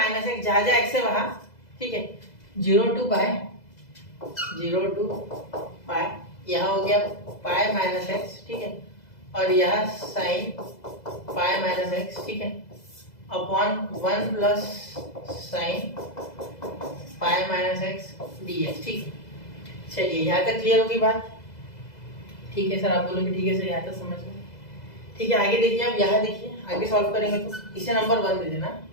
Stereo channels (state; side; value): late; right; 2.0 ms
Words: एक्स, जहाँ जहाँ एक्स है वहाँ। ठीक है, 0 टू पाई, यहाँ हो गया पाई माइनस एक्स। ठीक है, और यहाँ साइन पाई माइनस एक्स। ठीक है, upon 1 plus sine pi minus x dx। ठीक है, चलिए यहाँ तक क्लियर होगी बात। ठीक है सर, आप बोलोगे ठीक है सर, यहाँ तक समझ गए। ठीक है, आगे देखिए, अब यहाँ देखिए, आगे सॉल्व करेंगे तो इसे नंबर 1 दे देना,